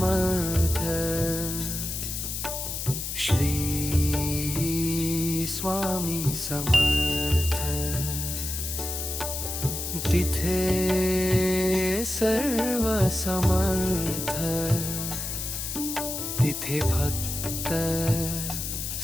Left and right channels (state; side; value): noise; left; hiss, 4 dB below the sound